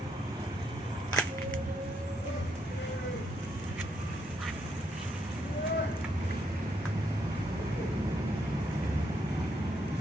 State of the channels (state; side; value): normal; both; correlation 0.76